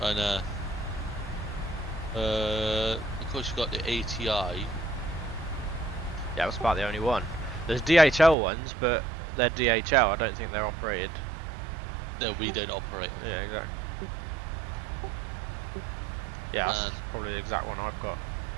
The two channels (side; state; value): left; drops out; at 8.3 s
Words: know. Of course you got the ATI. Yeah, that's about the only one. There's DHL ones, but they're DHL. I don't think they're operated. No, we don't operate. Yeah, exactly. Yeah, that's probably the exact one I've got.